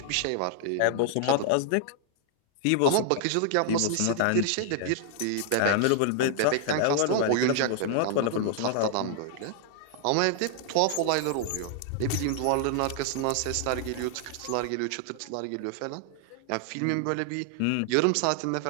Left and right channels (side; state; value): both; different; correlation -0.01